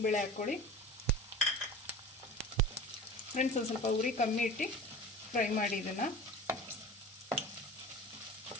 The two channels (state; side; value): normal; both; correlation 0.37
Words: ಹಾಕ್ಕೊಳ್ಳಿ ಫ್ರೆಂಡ್ಸ್. ಒಂದು ಸ್ವಲ್ಪ ಉರಿ ಕಮ್ಮಿ ಇಟ್ಟು ಫ್ರೈ ಮಾಡಿ ಇದನ್ನು.